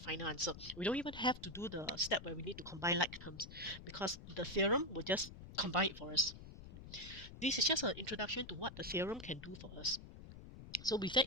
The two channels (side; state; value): left; noise; rumble, 14 dB below the sound